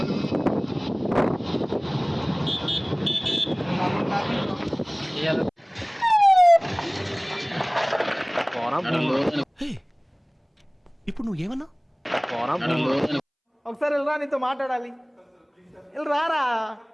ఇప్పుడు నువ్వు ఏమన్నా ఒకసారి వెళ్ళరా, నీతో మాట్లాడాలి. వెళ్ళి రారా.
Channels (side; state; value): both; identical; correlation 1.00